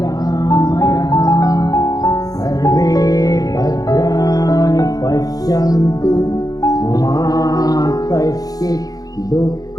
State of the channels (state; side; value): late; right; 0.18 ms